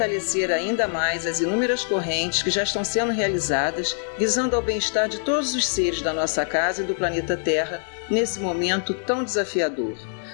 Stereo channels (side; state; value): right; silent; digital silence